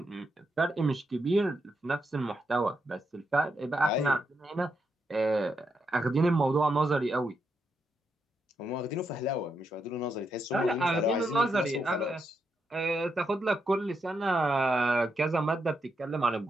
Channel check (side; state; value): both; normal; correlation 0.82